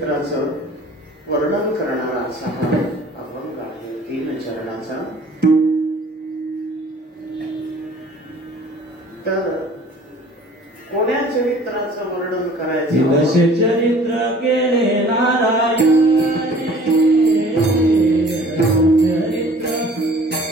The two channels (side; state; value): both; normal; correlation 0.50